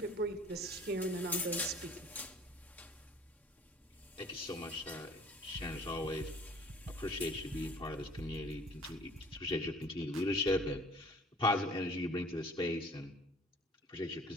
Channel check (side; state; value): both; normal; correlation 0.51